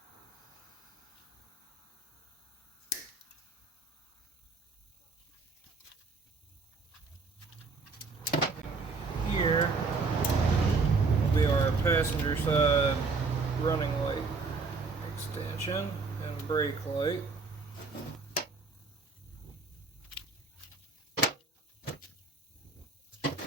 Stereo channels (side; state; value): left; quieter; 4.1 dB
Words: Here will be our passenger side running light extension and brake light.